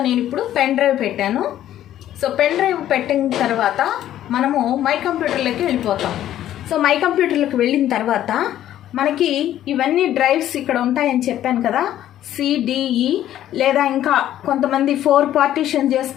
నేను ఇప్పుడు పెన్ డ్రైవ్ పెట్టాను. సో పెన్ డ్రైవ్ పెట్టిన తర్వాత మనము మై కంప్యూటర్లోకి వెళ్ళిపోతాం. సో మై కంప్యూటర్లోకి వెళ్ళిన తర్వాత మనకి ఇవన్నీ డ్రైవ్స్ ఇక్కడ ఉంటాయని చెప్పాను కదా, సిడిఈ లేదా ఇంకా కొంతమంది 4 పార్టీషన్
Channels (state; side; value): quieter; right; 12.1 dB